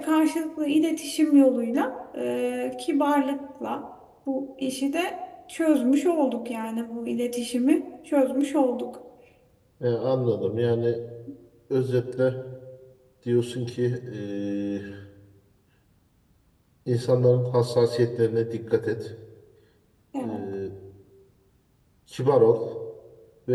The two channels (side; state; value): both; identical; correlation 1.00